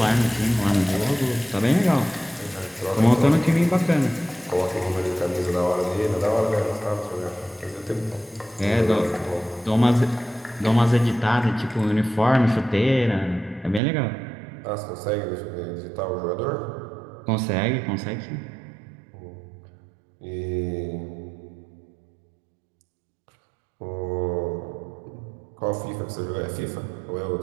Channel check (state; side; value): drops out; left; at 13.8 s